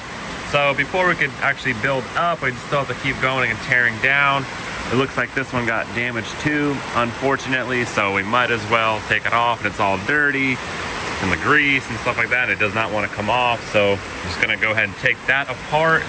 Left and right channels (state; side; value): identical; both; correlation 1.00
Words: So before we could actually build up, we still have to keep going and tearing down. It looks like this one got damaged too, unfortunately, so we might as well take it off. And it's all dirty and the grease and stuff like that. It does not want to come off, so I'm just gonna go ahead and take that apart,